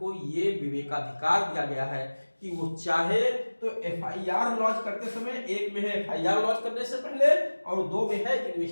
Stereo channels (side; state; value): both; inverted; correlation -1.00